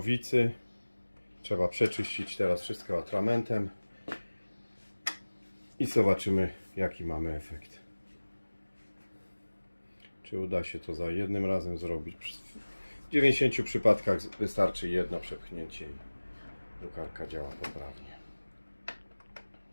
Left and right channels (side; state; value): both; inverted; correlation -1.00